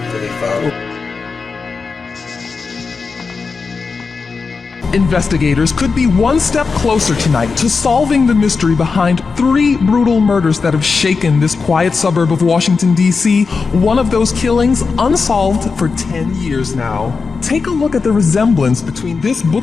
Investigators could be one step closer tonight to solving the mystery behind 3 brutal murders that have shaken this quiet suburb of Washington, D.C., one of those killings unsolved for 10 years now. Take a look at the resemblance between this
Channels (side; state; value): right; quieter; 4.8 dB